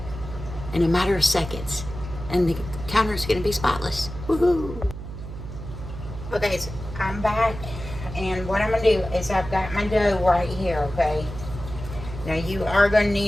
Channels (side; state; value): right; noise; hum, 10 dB below the sound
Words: in a matter of seconds. And the counter is going to be spotless. Woohoo! Okay, so I'm back. And what I'm going to do is I've got my dough right here, okay? Now you are going to